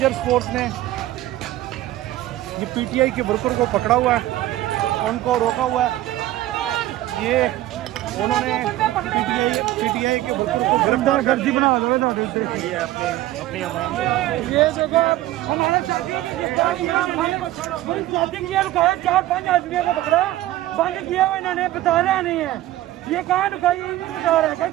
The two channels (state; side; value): quieter; left; 15.2 dB